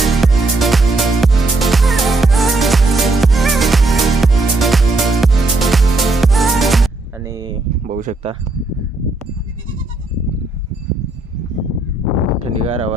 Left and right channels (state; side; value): quieter; left; 3.1 dB